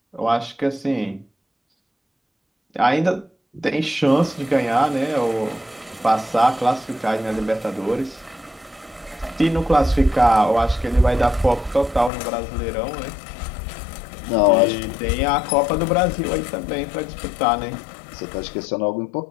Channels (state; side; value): drops out; right; at 12.1 s